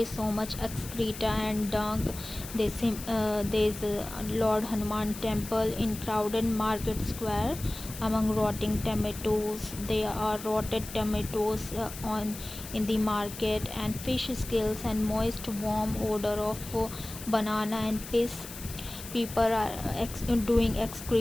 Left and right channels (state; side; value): noise; left; hiss, 12 dB below the sound